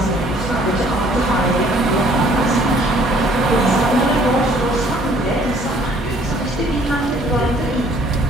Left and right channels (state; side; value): normal; both; correlation 0.59